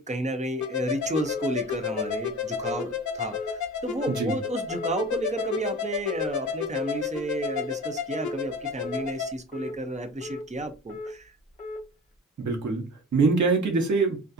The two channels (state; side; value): normal; both; correlation 0.37